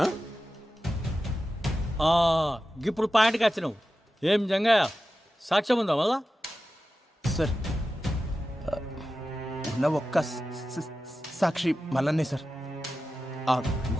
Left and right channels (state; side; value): normal; both; correlation 0.93